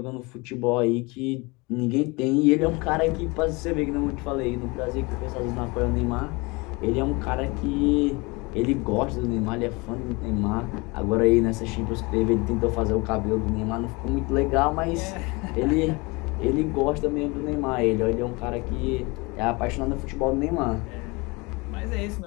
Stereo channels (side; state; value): right; quieter; 26.1 dB